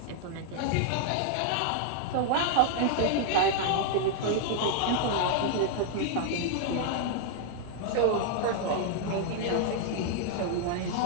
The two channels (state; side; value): different; both; correlation 0.00